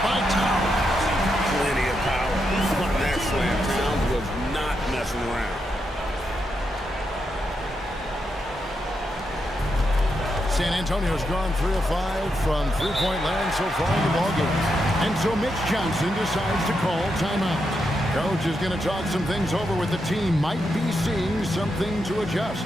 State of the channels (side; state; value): both; normal; correlation 0.83